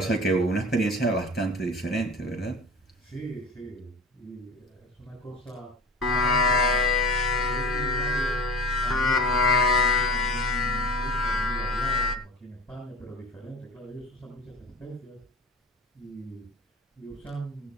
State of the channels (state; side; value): normal; both; correlation 0.36